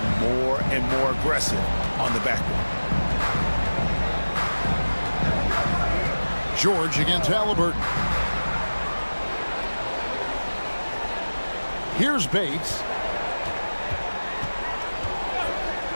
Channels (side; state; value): both; inverted; correlation -1.00